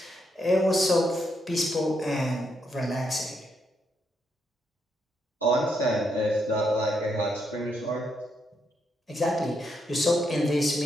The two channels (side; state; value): both; normal; correlation 0.79